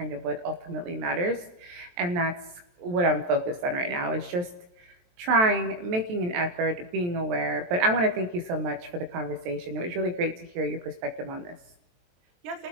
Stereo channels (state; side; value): late; left; 23 ms